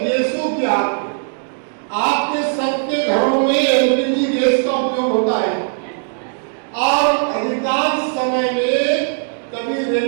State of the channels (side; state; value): left; silent; digital silence